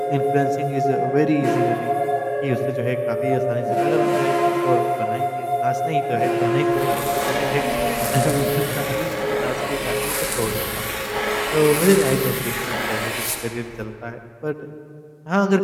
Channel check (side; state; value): both; identical; correlation 1.00